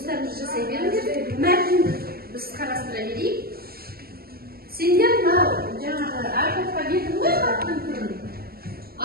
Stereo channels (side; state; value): left; late; 0.45 ms